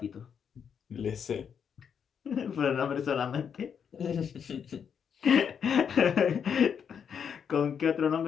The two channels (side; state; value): right; quieter; 7.4 dB